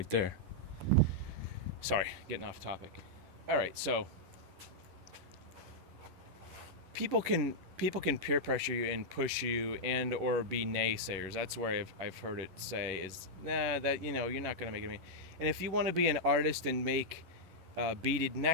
there. Sorry, getting off topic. All right, so people can peer pressure you and push you and or be naysayers. That's where I've heard it say is, that you're not going to make it. And if you want to be an artist and make beaded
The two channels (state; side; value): late; left; 10 ms